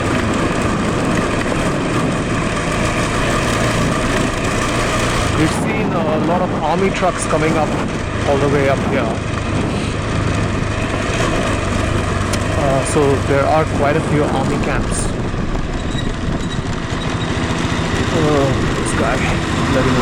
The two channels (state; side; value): identical; both; correlation 1.00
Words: We've seen a lot of army trucks coming up all the way up here. So there are quite a few army camps. This guy letting